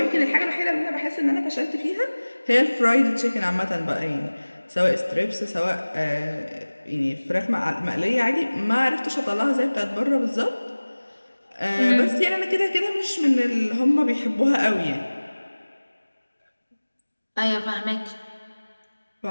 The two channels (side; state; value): both; inverted; correlation -1.00